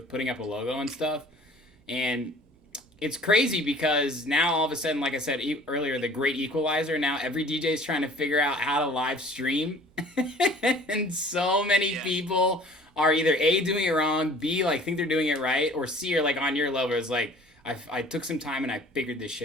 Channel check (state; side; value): normal; both; correlation 0.49